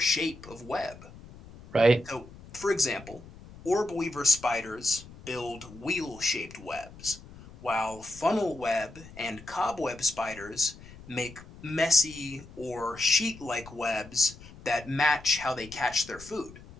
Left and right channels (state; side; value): noise; left; rumble, 18 dB below the sound